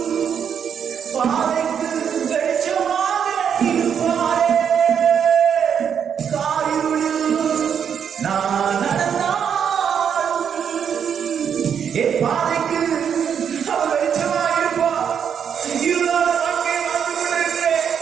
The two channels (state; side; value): quieter; left; 7.8 dB